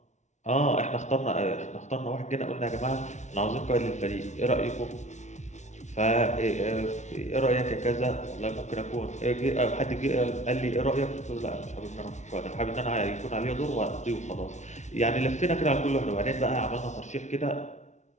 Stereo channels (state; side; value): late; right; 0.34 ms